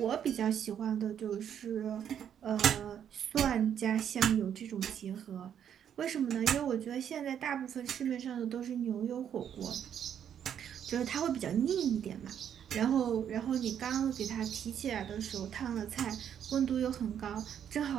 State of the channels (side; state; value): left; quieter; 9.0 dB